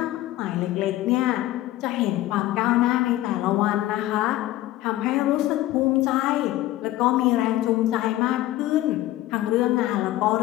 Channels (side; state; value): right; quieter; 15.5 dB